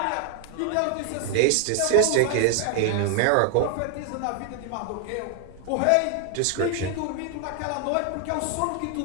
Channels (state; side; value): different; both; correlation 0.00